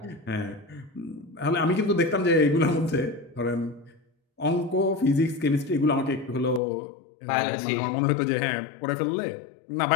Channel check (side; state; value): right; drops out; at 6.6 s